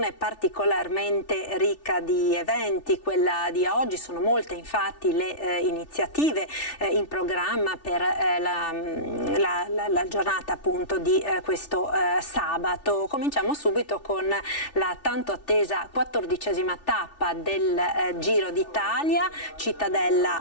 particolarmente ricca di eventi. Quella di oggi, sono molte infatti le iniziative in programma per la giornata appunto di questo sabato. Cominciamo subito con la tanto attesa 14ª tappa del Giro d'Italia, Cittadella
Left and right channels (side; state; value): right; late; 3.4 ms